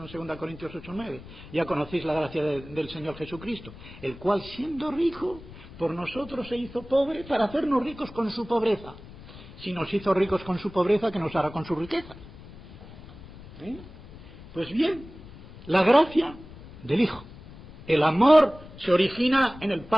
2 Corintios 8:9, ya conocéis la gracia del Señor Jesucristo, el cual siendo rico, por nosotros se hizo pobre para hacernos ricos con su pobreza. Si nos hizo ricos con su pobreza, ¿qué nos hará con su riqueza? Pues bien, la gracia del Hijo. El amor se origina en el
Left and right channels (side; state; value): left; noise; rumble, 17 dB below the sound